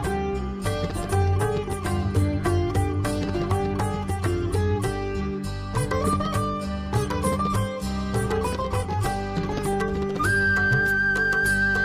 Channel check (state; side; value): identical; both; correlation 1.00